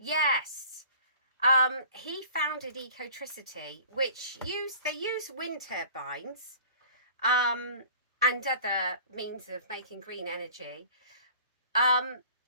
He founded Ecotricity, which they use wind turbines and other means of making green energy. But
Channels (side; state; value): both; inverted; correlation -0.46